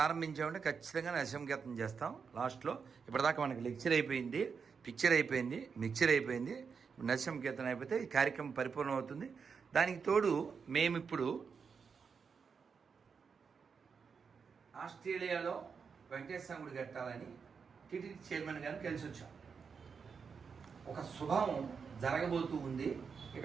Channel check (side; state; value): left; quieter; 5.9 dB